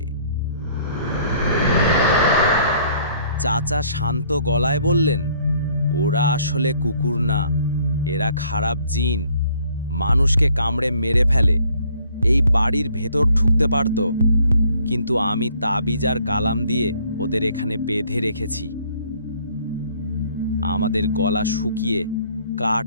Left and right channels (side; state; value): both; inverted; correlation -0.61